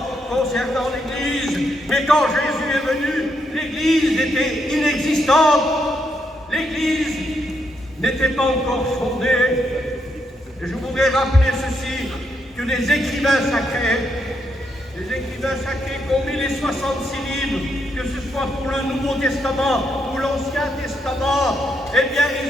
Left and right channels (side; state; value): both; normal; correlation 0.78